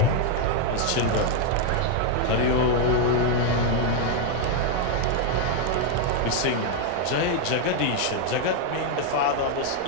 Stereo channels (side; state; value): both; different; correlation 0.00